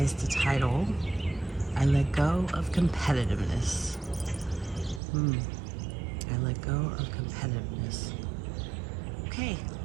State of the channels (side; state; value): left; drops out; at 5.0 s